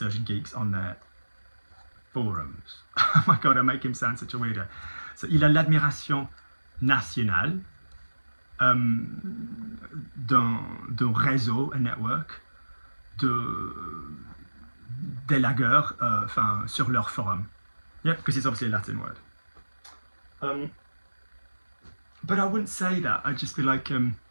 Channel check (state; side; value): inverted; both; correlation -1.00